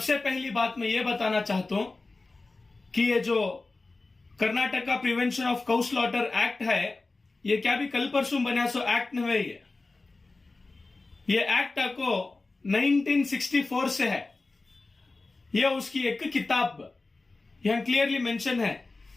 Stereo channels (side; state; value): right; quieter; 3.5 dB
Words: पहली बात मैं ये बताना चाहता हूं कि ये जो Karnataka prevention of cow slaughter act है ये क्या भी कल परसों बना सो एक्ट नहीं है। ये एक्ट को 1964 से है। यह उसकी एक किताब यहां क्लियरली मेंशन है,